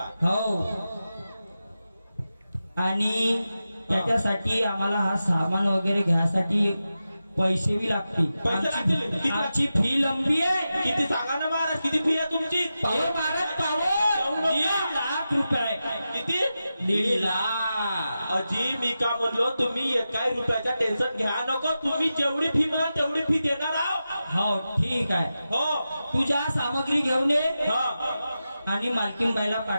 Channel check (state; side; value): inverted; both; correlation -0.92